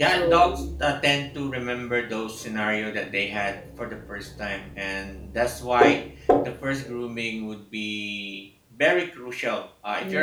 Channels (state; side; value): identical; both; correlation 1.00